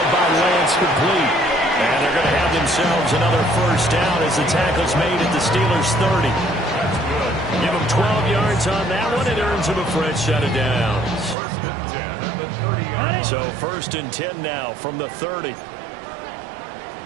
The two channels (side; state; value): left; drops out; at 11.4 s